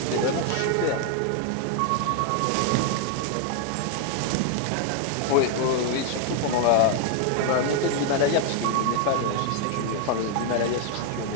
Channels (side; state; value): both; different; correlation 0.00